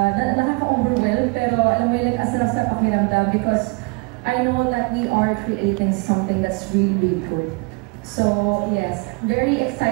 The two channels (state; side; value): quieter; left; 29.9 dB